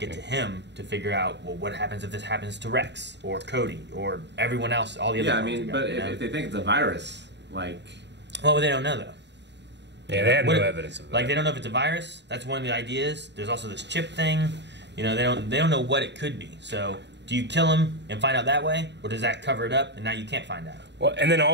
to him to figure out, well, what happens if this happens to Rex or Cody or everyone else, all the other. Yeah, I mean, but if they think it's a virus, like, well, they don't know though. Yeah, they have no evidence of that. Like, they don't know if it's a virus. That's one of the ideas. There's also this chip thing. They don't know what it could be. So, do you kill him and find out that way, or does that cover it up and now you can't find out? Well, and then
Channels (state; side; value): late; left; 0.51 ms